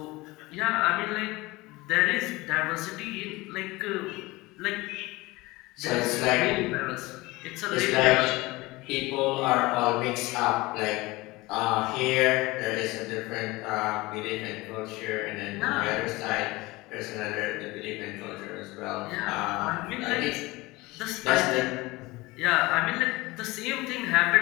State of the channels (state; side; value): quieter; right; 21.4 dB